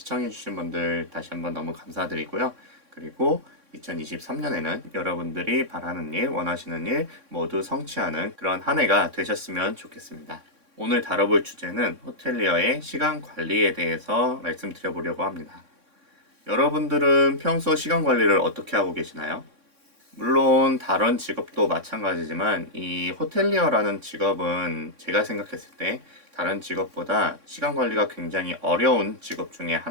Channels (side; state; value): left; late; 3.6 ms